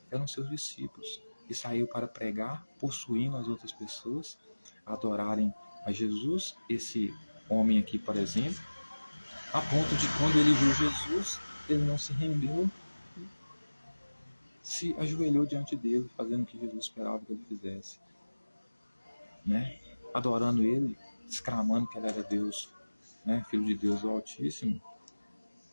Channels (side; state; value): both; inverted; correlation -1.00